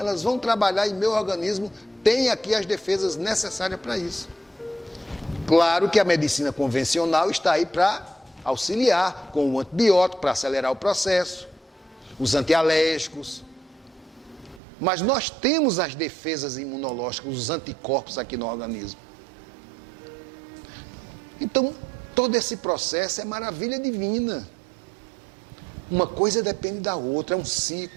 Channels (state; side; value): drops out; left; at 14.6 s